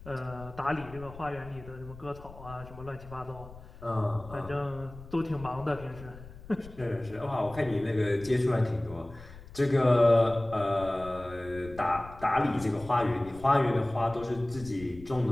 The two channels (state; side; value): noise; left; rumble, 17 dB below the sound